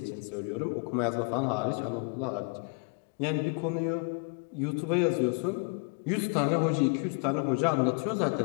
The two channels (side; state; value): right; quieter; 34.5 dB